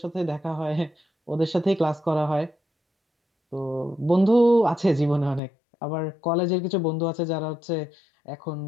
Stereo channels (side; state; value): right; drops out; at 5.4 s